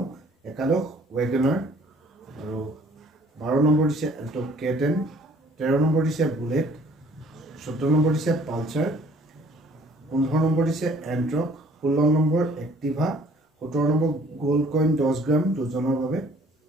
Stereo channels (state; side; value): normal; both; correlation 0.57